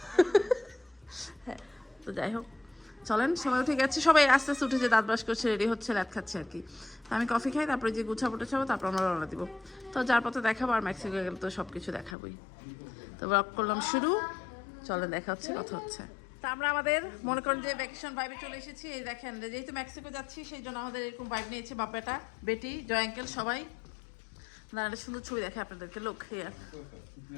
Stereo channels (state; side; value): drops out; right; at 12.2 s